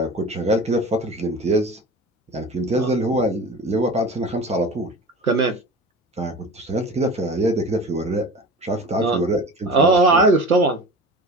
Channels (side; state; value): both; normal; correlation 0.35